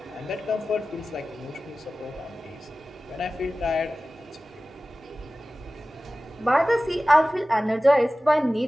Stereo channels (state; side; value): normal; both; correlation 0.96